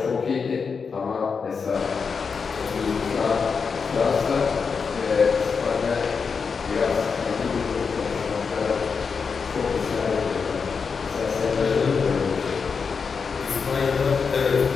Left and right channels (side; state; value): right; quieter; 5.5 dB